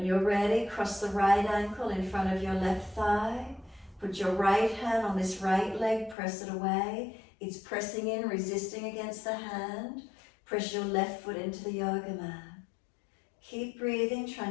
you're ready, cross the right ankle in front of your left thigh. Put your right hand on this right leg, press it away. It's pressing in, resisting against the hand. Press your left foot into the yoga mat. Keep breathing,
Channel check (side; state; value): right; drops out; at 6.2 s